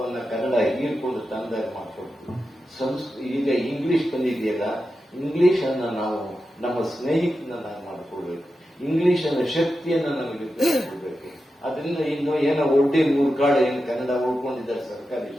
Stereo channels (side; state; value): both; normal; correlation 0.90